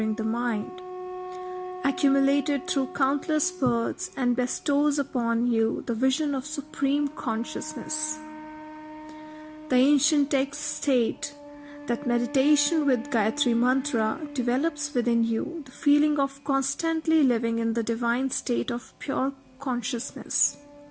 the mind, accumulated through countless births, and bestows upon you the vision of supreme consciousness. The ancient texts state that meditation with Gayatri Mantra develops within you the feeling of constantly living in the divine state of pure consciousness.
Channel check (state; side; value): identical; both; correlation 1.00